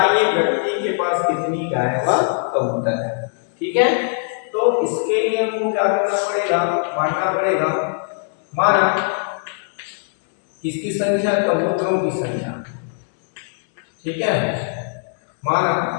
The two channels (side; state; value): right; silent; digital silence